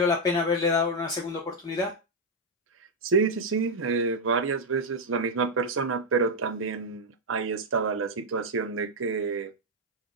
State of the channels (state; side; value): normal; both; correlation -0.01